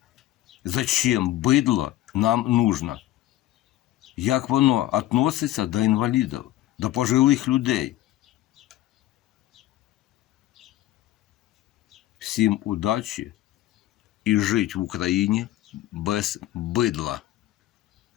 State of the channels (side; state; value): right; quieter; 14.6 dB